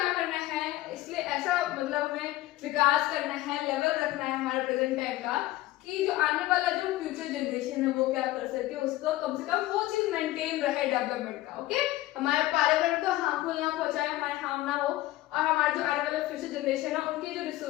करना है, इसलिए ऐसा मतलब हमें विकास करना है, लेवल रखना है हमारे प्रेजेंट टाइम का, कि जो आने वाला जो फ्यूचर जनरेशन है वो क्या कर सके, उसको कम से कम वो चीज मेंटेन रहे डेवलपमेंट का। ओके, हमारे पर्यावरण को हार्मफुल ना पहुंचाए, हमारे हार्म ना हो, और हमारे जो आने वाले फ्यूचर जनरेशन है उनके जो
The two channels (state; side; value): quieter; right; 16.7 dB